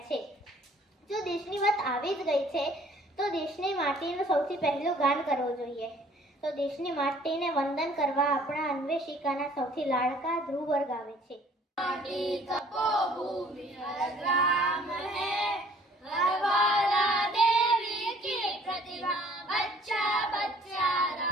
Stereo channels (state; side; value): normal; both; correlation 0.56